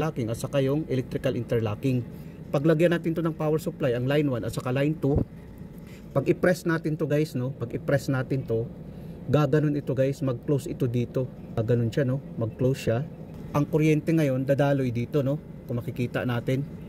at saka yung electrical interlocking. Paglagyan natin to ng power supply, ang line 1 at saka line 2, pag i-press natin to guys, no, pag i-press natin to, gaganon ito guys, mag-close ito dito, gaganon siya, no, mag-close siya. Ang kuryente ngayon dadaloy dito, no, kung makikita natin,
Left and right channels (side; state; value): both; identical; correlation 1.00